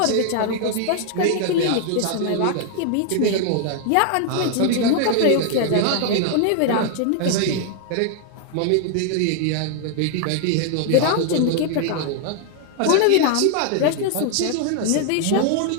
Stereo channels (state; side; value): different; both; correlation 0.00